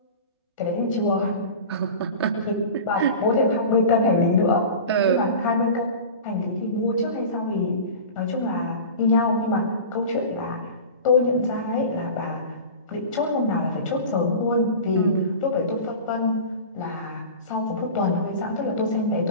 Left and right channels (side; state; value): both; inverted; correlation -0.34